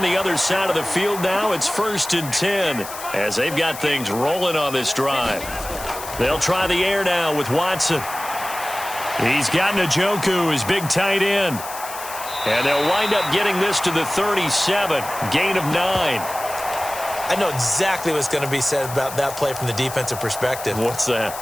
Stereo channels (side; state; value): left; noise; hiss, 11 dB below the sound